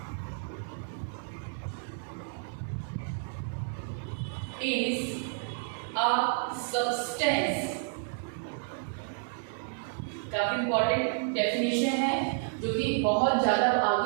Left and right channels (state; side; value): silent; left; digital silence